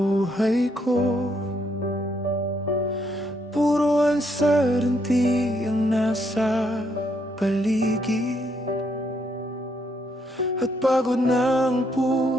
ko. Puro uncertainty ang nasa paligid, at pagod na ang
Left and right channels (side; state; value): both; normal; correlation 0.74